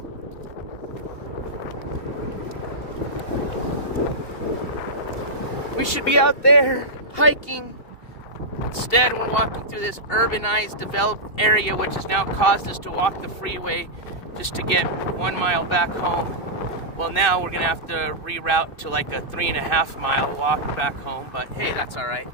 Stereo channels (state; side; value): late; right; 2.7 ms